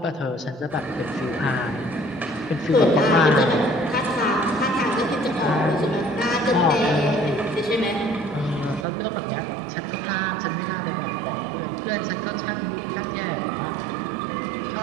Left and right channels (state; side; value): drops out; left; at 8.8 s